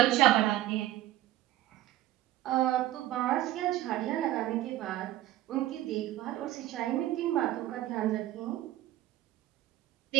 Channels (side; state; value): left; quieter; 14.7 dB